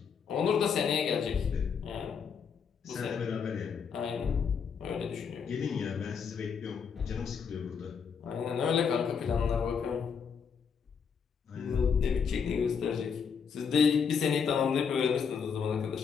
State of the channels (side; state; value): right; quieter; 6.4 dB